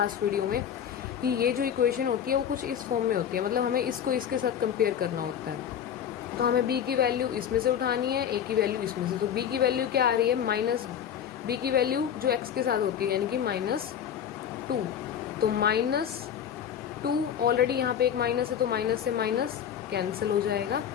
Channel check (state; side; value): quieter; right; 9.0 dB